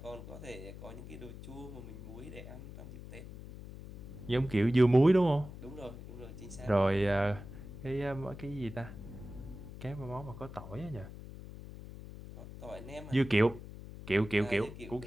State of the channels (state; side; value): noise; left; hum, 13 dB below the sound